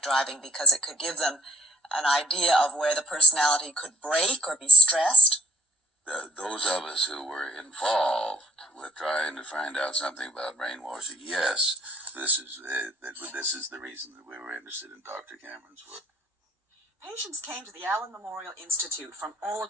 driving because it could give them an idea of where the personality could break or be stressed. Those of us who were involved with trying to find out something about brainwashing, yes, this is the reason that we were interested in Dr. Cameron's work. Patients came to the Allen Memorial Institute from all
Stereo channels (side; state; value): both; normal; correlation 0.61